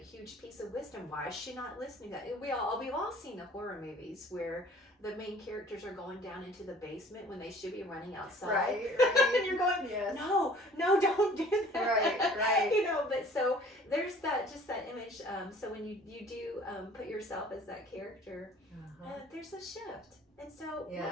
piece of wisdom. Why is she not listening to that? We've all seen the horror movies where the main characters are going down into the basement when they should be running outside. Right. And you're going, no, don't do that. Right. You know, but so there's that image. So when you do put yourself as that character, there's a shift. And so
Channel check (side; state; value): both; normal; correlation 0.51